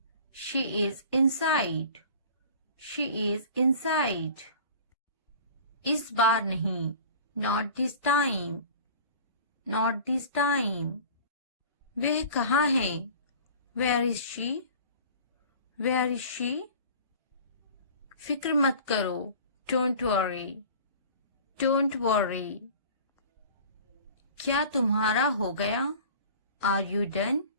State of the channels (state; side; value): inverted; both; correlation -0.42